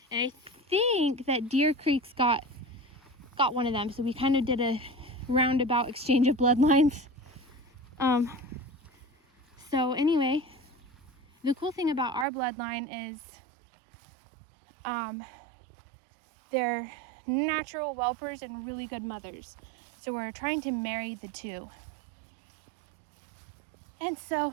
And I think that Deer Creek's got one of them. So we kind of did a roundabout exchange of bloodlines. So anyway, the cool thing about our bloodline is they're natural whelpers and really good mothers. So we're trying to marry the two. And so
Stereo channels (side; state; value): left; drops out; at 12.2 s